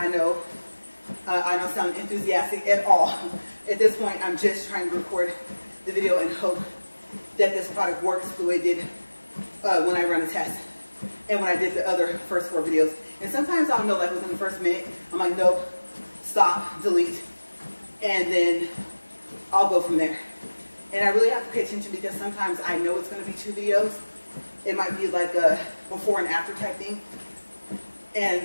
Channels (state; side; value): inverted; both; correlation -1.00